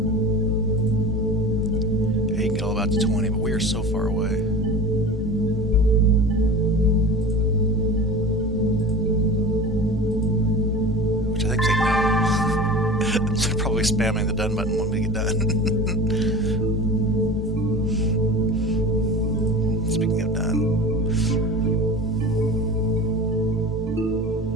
Yeah, you can get all about to 20, but we are so far away. Which I think they know. They're probably spamming the done button when we get done. Speaking of done.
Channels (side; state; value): both; normal; correlation 0.34